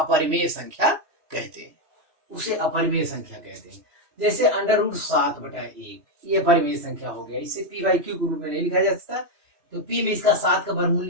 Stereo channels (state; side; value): late; left; 3.1 ms